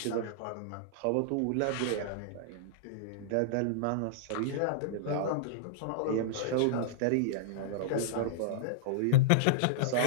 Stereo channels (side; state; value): both; different; correlation -0.02